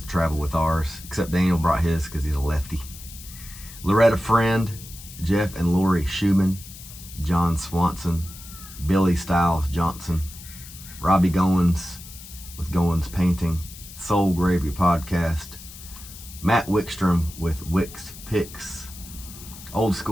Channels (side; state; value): left; noise; hiss, 16 dB below the sound